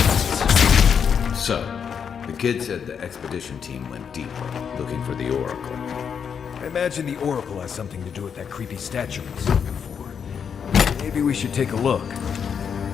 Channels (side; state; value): right; quieter; 7.1 dB